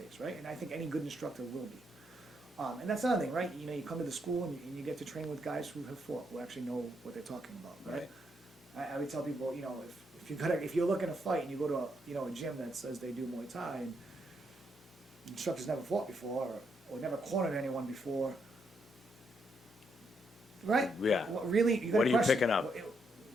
right? And I think any good instructor will be. And that's another thing, right? You know, you come to the school and you get to train with guys who have fought, who actually know what they're talking about, right? I would tell people, you know, if you're looking to fight and you go to a gym that says they do Muay Thai and instructors never fought before or never cornered anyone before, right? Yeah. Really, you got What are you picking up?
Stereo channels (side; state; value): both; normal; correlation 0.77